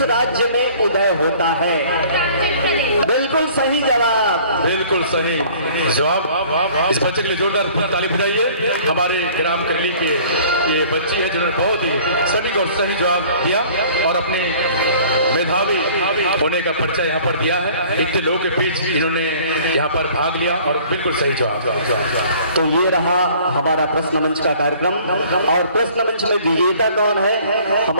राज्य में उदय होता है? बिल्कुल सही जवाब। बिल्कुल सही जवाब। इस बच्चे के लिए जोरदार ताली बजाइए। हमारे ग्राम करली के ये बच्ची है जिन्होंने बहुत ही सटीक और सही जवाब दिया और अपने मेधावी होने का परिचय यहाँ पर दिया है। इतने लोगों के बीच इन्होंने यहाँ पर भाग लिया और बिल्कुल सही जवाब। तो ये रहा हमारा प्रश्न मंच का कार्यक्रम और प्रश्न मंच में विजेता कौन है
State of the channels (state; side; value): inverted; both; correlation -0.51